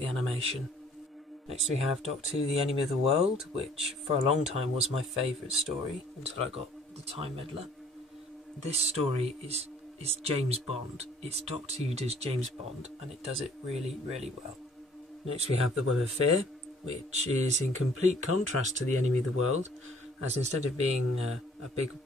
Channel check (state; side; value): normal; both; correlation 0.57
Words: animation. Next we have Doctor Who the Enemy of the World, which for a long time was my favourite story until I got the Time Meddler. This story is James Bond. It's Doctor Who does James Bond, and it does it really, really well. Next we have The Web of Fear, which is in complete contrast to the Enemy of the World, as instead of being a big